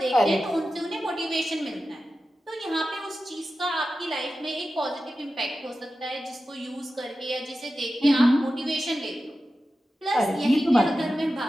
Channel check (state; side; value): normal; both; correlation 0.93